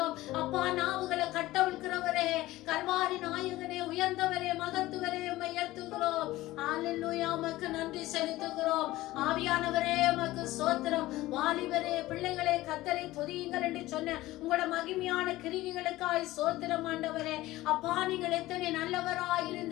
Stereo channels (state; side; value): quieter; right; 17.3 dB